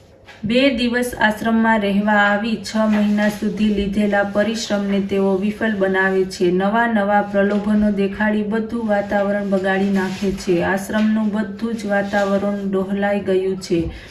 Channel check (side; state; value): both; identical; correlation 1.00